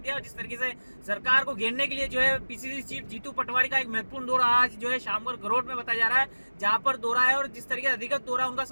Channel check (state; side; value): inverted; both; correlation -1.00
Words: और जिस तरीके से सरकार को घेरने के लिए जो है पीसीसी चीफ जीतू पटवारी का एक महत्वपूर्ण दौरा आज जो है शामगढ़ गरोड में बताया जा रहा है, जहां पर दौरा है और जिस तरीके से अधिकृत दौरा उनका